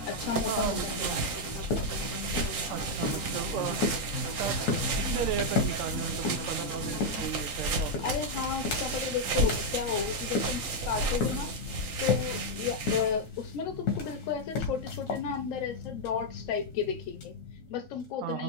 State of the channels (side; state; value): right; late; 3.8 ms